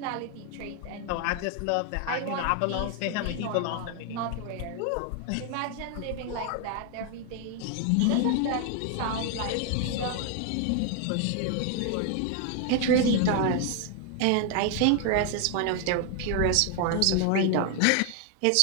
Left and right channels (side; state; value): both; different; correlation 0.00